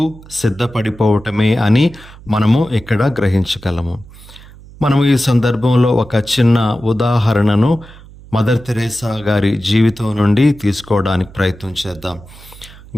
సిద్ధపడిపోవటమే అని మనము ఇక్కడ గ్రహించగలము. మనము ఈ సందర్భంలో ఒక చిన్న ఉదాహరణను మదర్ తెరేసా గారి జీవితం నుండి తీసుకోవడానికి ప్రయత్నం చేద్దాం.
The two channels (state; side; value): noise; right; hum, 20 dB below the sound